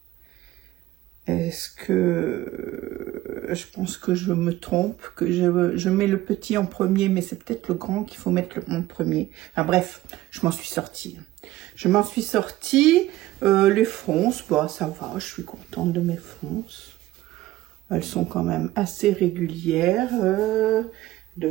est-ce que je pense que je me trompe, que je mets le petit en premier, mais c'est peut-être le grand qu'il faut mettre en premier. Enfin bref, je m'en suis sortie. Je m'en suis sortie. Les fronces, bah ça va, je suis contente de mes fronces. Elles sont quand même assez régulières.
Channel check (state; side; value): quieter; left; 16.1 dB